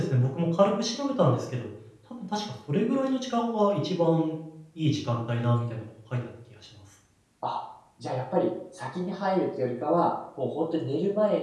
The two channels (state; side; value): identical; both; correlation 1.00